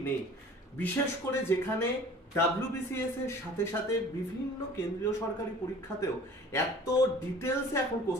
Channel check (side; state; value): both; normal; correlation 0.46